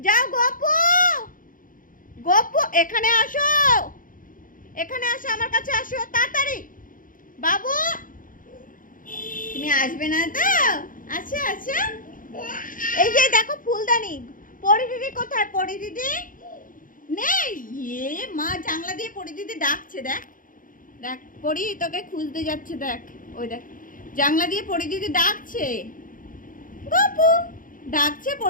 যাও গপু, গপু এখানে আসো, এখানে আসো, আমার কাছে আসো তাড়াতাড়ি। বাবু তুমি আসবে না তো? আচ্ছা আচ্ছা, এই যে দেখো ফুলদানি। পরি দিদি কোথায়? পরি দিদি নেই। এ মা জানলা দিয়ে পরি দিদি ডাকছে, দেখ দেখ, পরি তোকে খুঁজতে যাচ্ছে, দেখ ওই দেখ, জানলা দিয়ে পরি দিদি ডাকছে। গপু ডাকছে,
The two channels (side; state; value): right; late; 0.39 ms